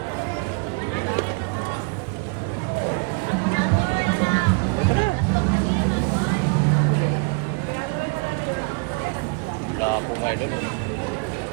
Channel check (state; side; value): quieter; left; 32.4 dB